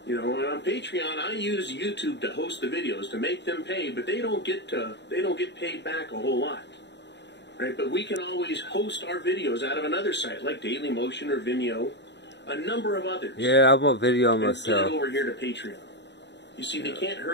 You know, and on Patreon, I use YouTube to host the videos to make them pay, but they don't get paid back a whole lot, right? But we can always host our videos out of another site like Dailymotion or Vimeo. A number of others. Yeah, I'm on video myself. Get over here to Patreon. You see, they can't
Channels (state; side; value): late; right; 0.51 ms